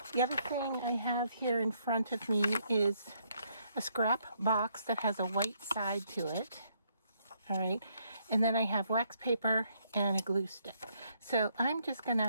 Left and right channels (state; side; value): inverted; both; correlation -0.72